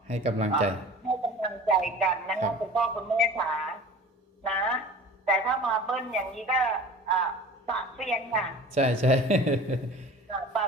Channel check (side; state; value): both; normal; correlation 0.41